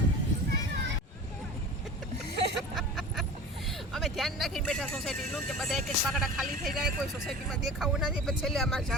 અમે ધ્યાન રાખીને બેઠા સોસાયટીનું કે બધા એક એક પાકડા ખાલી થઈ જાય કોઈ સોસાયટીમાં દેખાવું ના જાય પછી છેલ્લે અમારે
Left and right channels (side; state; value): both; normal; correlation 0.37